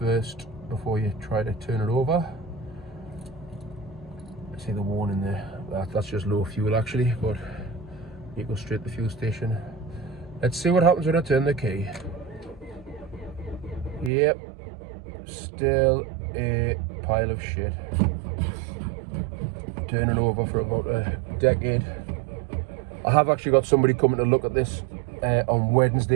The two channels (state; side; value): drops out; left; at 14.1 s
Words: before you try to turn it over. See the warning there, that's just low fuel actually, but you go straight to the fuel station. Let's see what happens when I turn the key. Yep, still a pile of shit. Turning over for about a decade. I have actually got somebody coming to look at this on